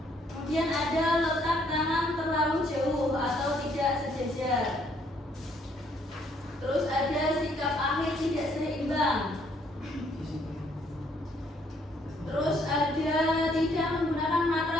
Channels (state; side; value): normal; both; correlation 0.67